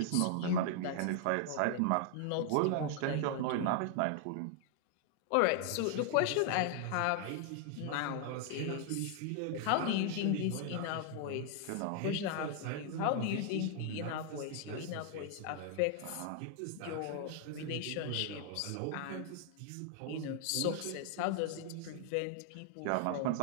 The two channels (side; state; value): both; different; correlation 0.00